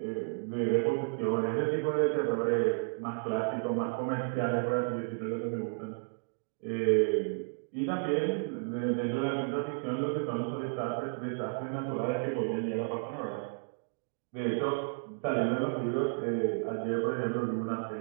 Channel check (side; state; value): left; silent; digital silence